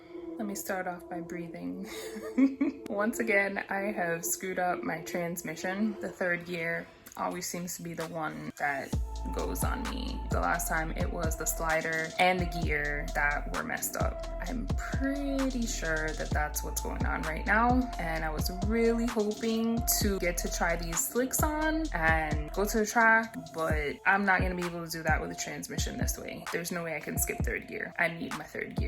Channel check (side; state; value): both; identical; correlation 1.00